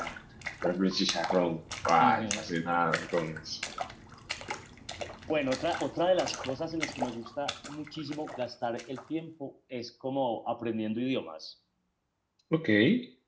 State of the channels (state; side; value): identical; both; correlation 1.00